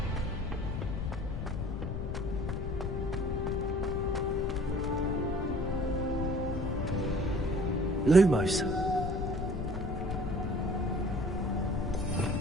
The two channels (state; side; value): noise; left; rumble, 3 dB below the sound